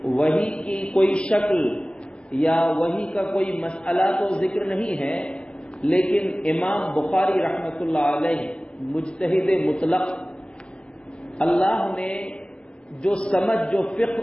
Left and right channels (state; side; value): late; right; 0.049 ms